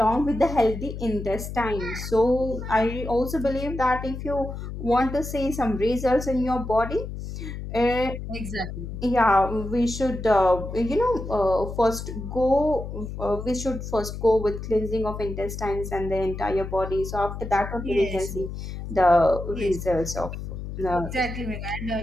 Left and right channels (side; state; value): left; noise; hum, 8 dB below the sound